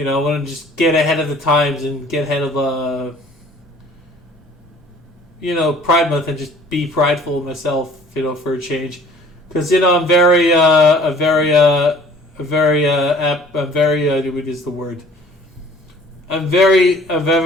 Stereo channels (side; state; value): both; normal; correlation 0.52